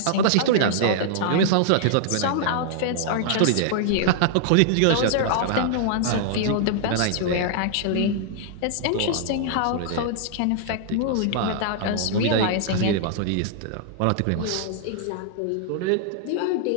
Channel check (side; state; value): both; different; correlation -0.01